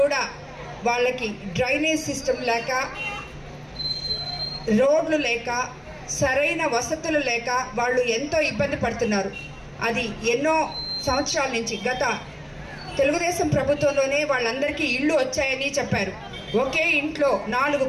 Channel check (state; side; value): identical; both; correlation 1.00